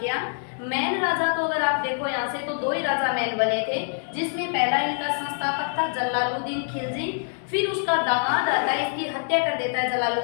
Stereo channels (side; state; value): right; silent; 60 dB below the other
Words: मैन राजा तो अगर आप देखो यहाँ से तो दो ही राजा मैन बने थे, जिसमें पहला इनका संस्थापक था जलालुद्दीन खिलजी। फिर उसका दामाद आता है, इसकी हत्या कर देता है